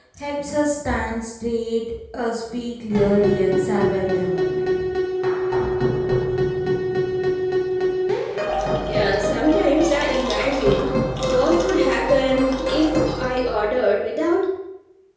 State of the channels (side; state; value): both; identical; correlation 1.00